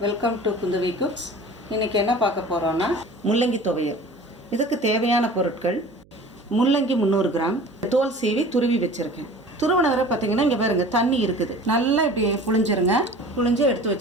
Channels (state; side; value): noise; right; hum, 28 dB below the sound